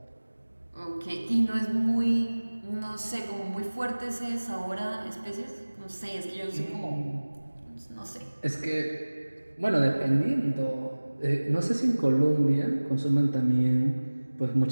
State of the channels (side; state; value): both; inverted; correlation -1.00